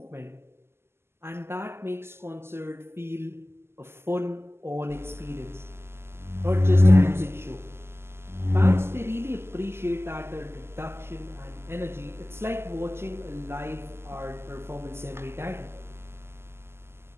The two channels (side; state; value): left; late; 0.12 ms